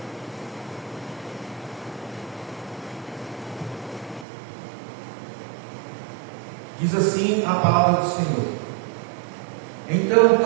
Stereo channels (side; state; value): left; drops out; at 4.2 s